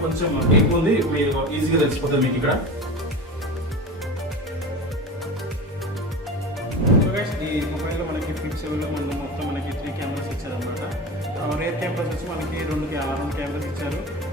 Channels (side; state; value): both; normal; correlation 0.29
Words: కొంచెం ఎక్కువ ఉంది. మీరు ఈజీగా తెలిసిపోతుంది మీకు ఇక్కడ. ఈ మొబైల్ లో మనకి ఫ్లిప్ 7 లో మనం మొత్తం మనకి 3 కెమెరాస్ ఇచ్చారు అనమాట. రేర్ కెమెరాస్ వచ్చి మనకి రెండు కెమెరాస్ ఇచ్చారు.